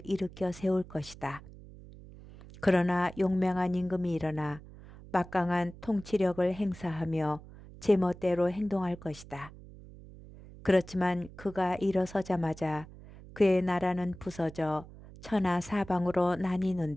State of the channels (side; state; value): right; noise; hum, 18 dB below the sound